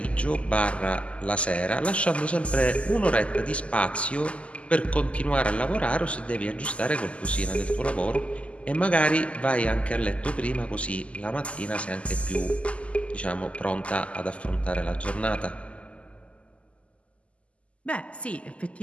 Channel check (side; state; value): right; late; 0.060 ms